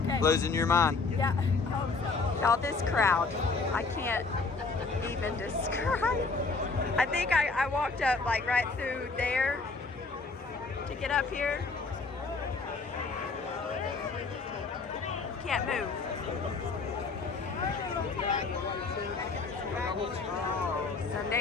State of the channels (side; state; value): right; quieter; 4.2 dB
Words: Losing your mind. Yeah, I hope so. Y'all, this crowd, I can't even describe. I think I walked up like right through there to get up here. Can't move.